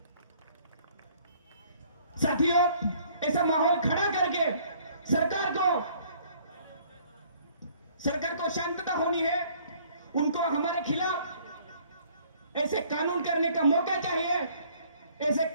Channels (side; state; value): both; inverted; correlation -0.59